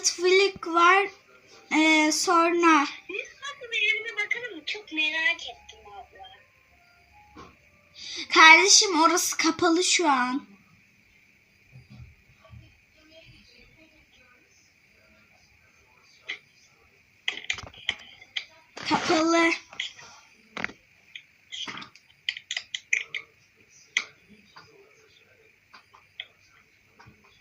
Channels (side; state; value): both; identical; correlation 1.00